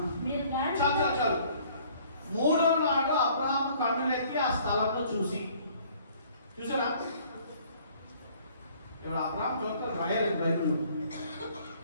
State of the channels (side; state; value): both; inverted; correlation -0.57